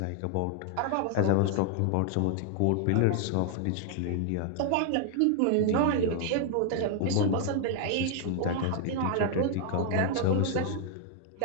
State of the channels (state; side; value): different; both; correlation 0.00